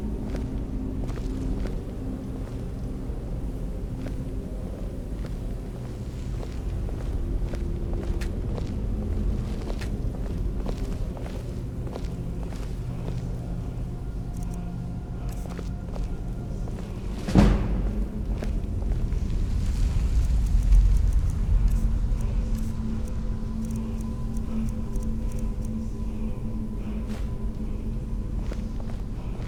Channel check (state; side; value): identical; both; correlation 1.00